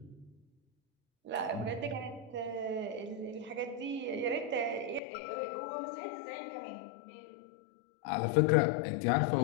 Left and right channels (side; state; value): right; drops out; at 5.0 s